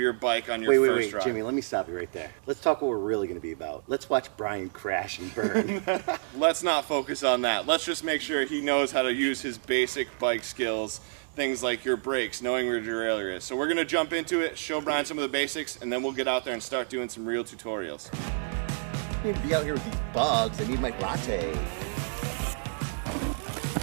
bike on your first ride. Jimmy, let me stop you right there. Let's talk what we're really going to be about. Let's watch Brian crash and burn. Let's not focus on that. Let's just make sure he knows how to use his basic bike skills. Things like your brakes, knowing where your derailleur is. So we're gonna jump into it, show Brian some of the basics, and then we'll get out there and start doing some real tutorials. I need to be out here with these bugs. I need my latte.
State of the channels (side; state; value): left; silent; digital silence